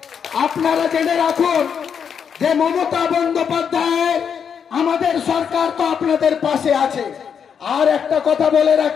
আপনারা জেনে রাখুন যে মমতা বন্দ্যোপাধ্যায় আমাদের সরকার তো আপনাদের পাশে আছে। আর একটা কথা বলে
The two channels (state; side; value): quieter; right; 7.3 dB